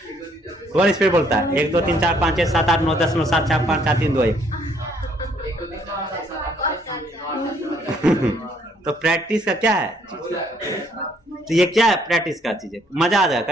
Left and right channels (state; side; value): normal; both; correlation 0.66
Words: कौन स्पीड बोलता है? 1 2 3 4 5 6 7 8 9 10 9 7 6 5 4 3 2 1। तो प्रैक्टिस का क्या है? तो ये क्या है? प्रैक्टिस का चीज है, मजा आ